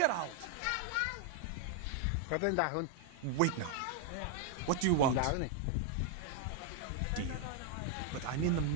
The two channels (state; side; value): different; both; correlation 0.00